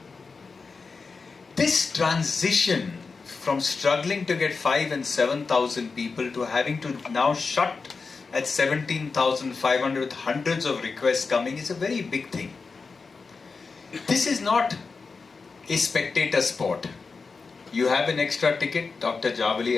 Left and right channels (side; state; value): right; quieter; 4.6 dB